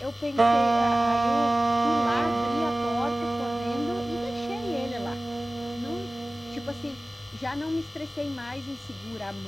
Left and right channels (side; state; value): both; normal; correlation 0.98